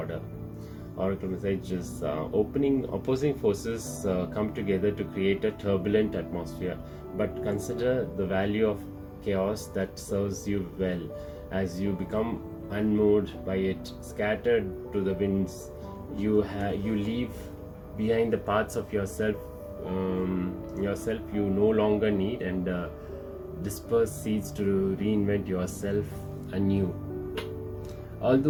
Oracle message is opposing forces come together to create a turbulent atmosphere, but consider the value of chaos that serves you well. As you become unmoved by it, scattered to the winds, you leave behind the parts of yourself you no longer need, and disperse seeds to reinvent yourself anew.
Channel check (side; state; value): both; identical; correlation 1.00